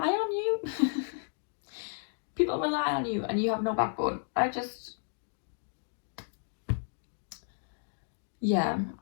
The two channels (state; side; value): silent; right; digital silence